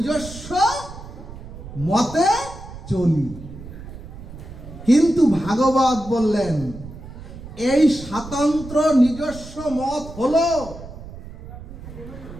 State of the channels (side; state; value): right; noise; rumble, 14 dB below the sound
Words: মতে চলি। কিন্তু ভাগবত বললেন, এই স্বাতন্ত্র নিজস্ব মত হলো